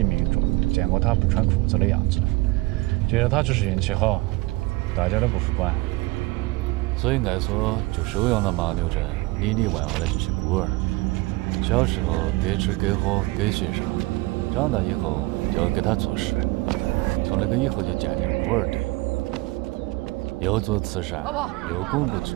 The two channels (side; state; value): left; quieter; 22.1 dB